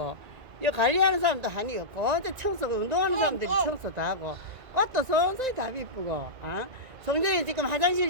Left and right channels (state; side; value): late; left; 2.1 ms